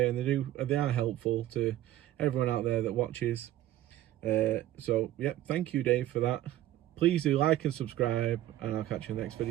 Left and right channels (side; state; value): left; quieter; 13.7 dB